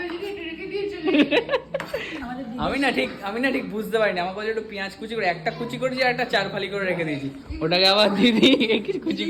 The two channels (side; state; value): both; identical; correlation 1.00